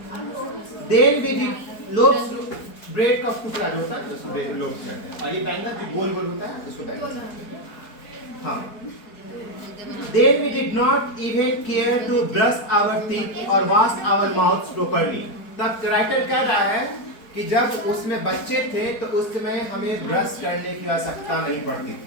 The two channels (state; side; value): late; right; 4.5 ms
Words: then we did loaves bread का टुकड़ा जो होता है उसको लोब्स कहते हैं। और ये बैंगल जो गोल गोल होता है उसको बैंगल्स कहते हैं। हाँ। Then we did not even care to brush our teeth or wash our mouths properly. तब राइटर कह रहा है कि जब उसमें बच्चे थे तो उस समय हमें ब्रश करने की आवश्यकता नहीं पड़ती